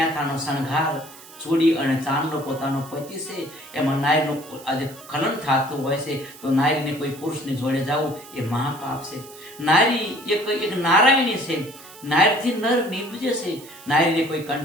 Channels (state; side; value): noise; right; hiss, 19 dB below the sound